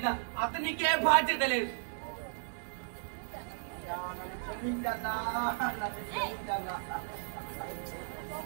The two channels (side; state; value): left; silent; digital silence